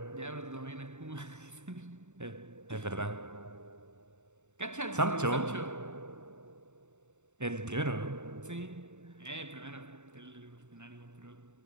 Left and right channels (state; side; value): late; left; 0.84 ms